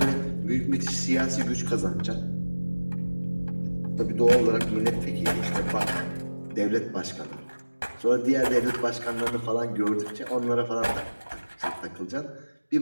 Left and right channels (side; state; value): both; inverted; correlation -1.00